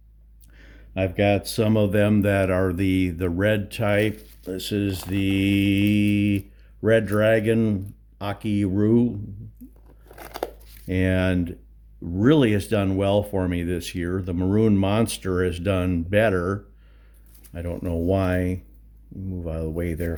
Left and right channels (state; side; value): identical; both; correlation 1.00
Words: I've got some of them that are the red type. This is the red dragon Akiru, and really has done well for me this year. The maroon monster has done better. I don't know why. Move out of the way there,